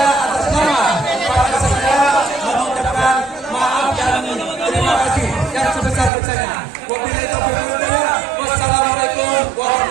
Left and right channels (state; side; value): drops out; left; at 6.1 s